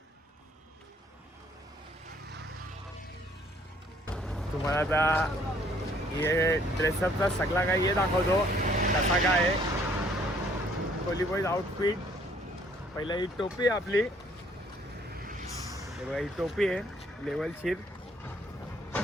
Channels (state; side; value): normal; both; correlation 0.62